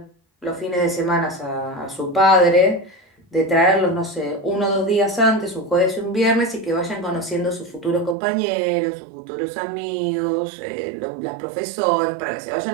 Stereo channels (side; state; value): left; drops out; at 8.2 s